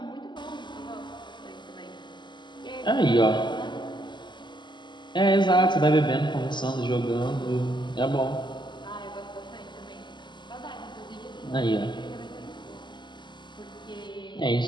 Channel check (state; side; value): late; right; 0.22 ms